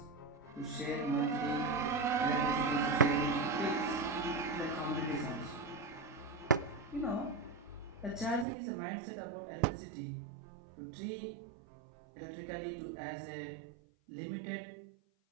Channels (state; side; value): drops out; left; at 8.5 s